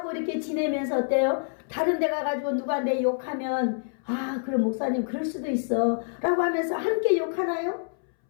이렇게 지내면서 어때요? 다른 데 가가지고 누가 내 욕하면 그럼 목사님 그럴 수도 있어 라고 하면서 함께 욕하나요?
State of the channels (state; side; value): silent; right; 60 dB below the other